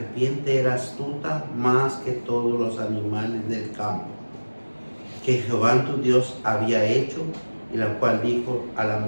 era astuta más que todos los animales del campo, que Jehová tu Dios había hecho, y la cual dijo a la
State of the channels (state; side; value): inverted; both; correlation -1.00